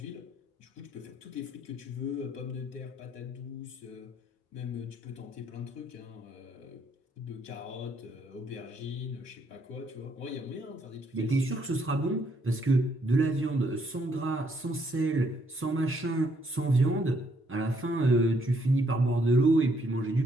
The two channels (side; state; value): both; normal; correlation 0.70